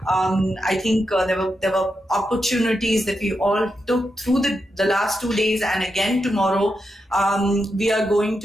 I think there were opportunities that we all took through the last 2 days, and again tomorrow. We are going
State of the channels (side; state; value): both; normal; correlation 0.86